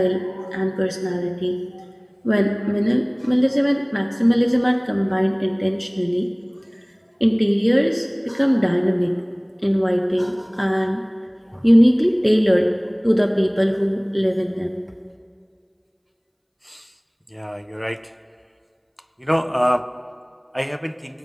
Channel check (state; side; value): identical; both; correlation 1.00